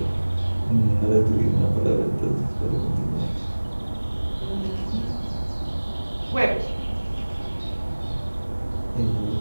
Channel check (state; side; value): inverted; both; correlation -1.00